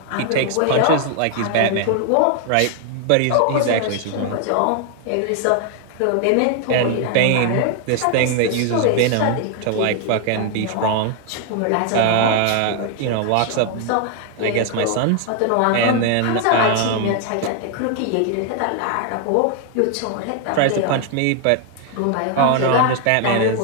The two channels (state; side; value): different; both; correlation 0.00